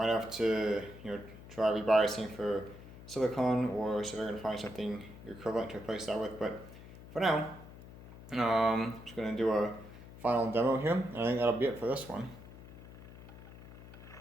have to, try rebiasing for silicon, or see if I can find something equivalent to replace that with. But for now, I'm just going to do a final demo here, and I think that'll be it for this one.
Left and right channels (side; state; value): left; noise; hum, 16 dB below the sound